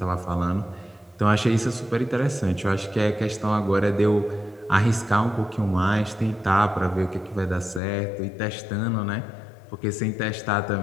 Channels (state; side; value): drops out; right; at 7.8 s